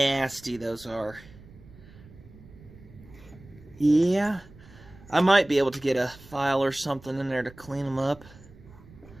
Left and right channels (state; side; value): noise; right; rumble, 21 dB below the sound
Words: those are. Yeah, I might be able to get a file or something in there to clean them up.